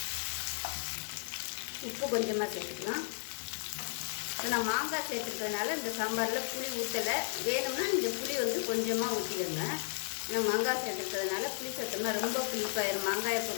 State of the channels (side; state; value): right; silent; 55 dB below the other